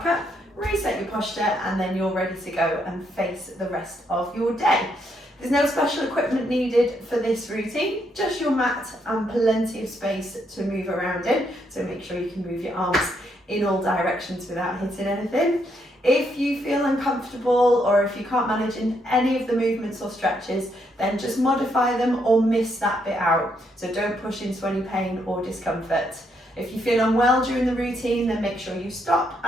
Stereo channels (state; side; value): normal; both; correlation 0.75